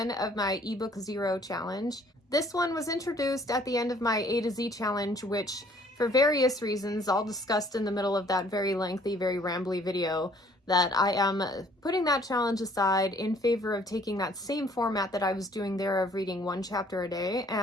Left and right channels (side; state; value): both; normal; correlation 0.59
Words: of my ebook 0 challenge. This one was introduced at the end of my A to Z challenge, which, for various reasons, all discussed in the middle of that very lengthy, very rambly video, that I am putting that challenge aside in favor of taking that same format that I was doing there of reading one chapter a day